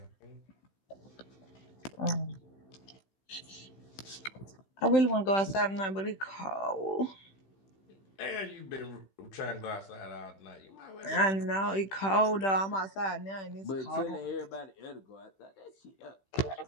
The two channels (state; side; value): late; right; 15 ms